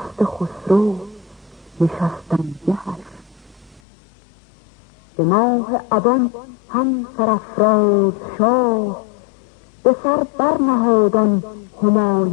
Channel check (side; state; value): right; drops out; at 3.8 s